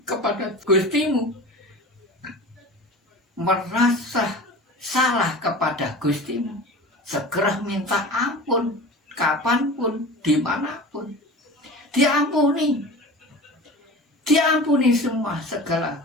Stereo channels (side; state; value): both; normal; correlation 0.35